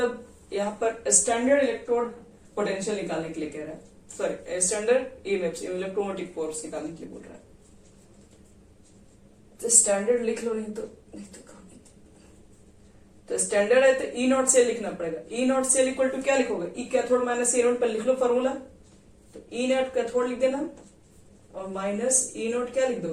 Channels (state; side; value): identical; both; correlation 1.00